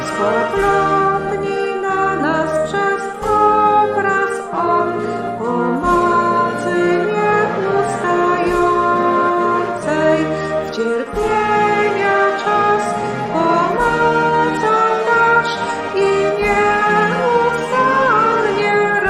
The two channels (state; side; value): identical; both; correlation 1.00